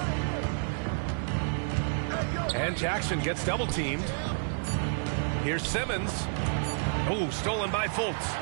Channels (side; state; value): left; silent; 58 dB below the other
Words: And Jackson gets double teamed. Here's Simmons. Oh, stolen by Fultz.